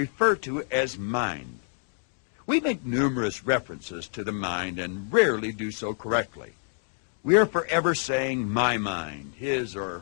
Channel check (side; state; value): right; silent; digital silence